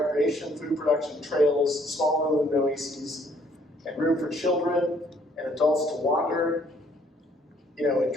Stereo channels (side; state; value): both; normal; correlation 0.63